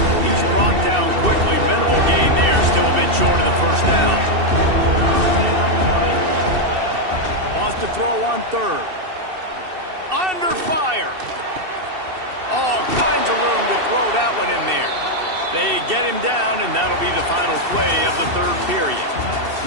He's brought down quickly. Minimal gain there, still a bit short of the first down. Wants to throw on 3rd. Under fire. All kinds of room to throw that one in there. They get him down, and that'll be the final play of the 3rd period.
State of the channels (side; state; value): left; late; 2.7 ms